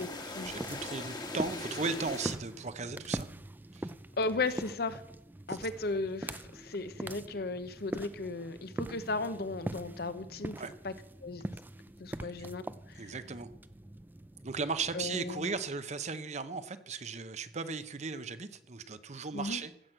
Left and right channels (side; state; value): both; normal; correlation 0.26